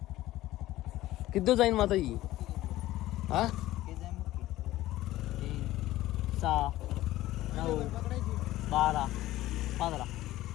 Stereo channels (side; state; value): right; quieter; 15.7 dB